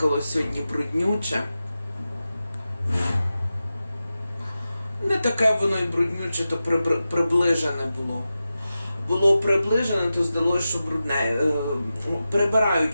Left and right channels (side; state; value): both; inverted; correlation -0.93